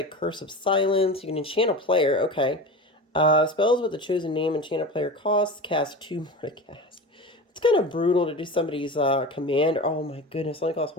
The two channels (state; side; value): normal; both; correlation 0.30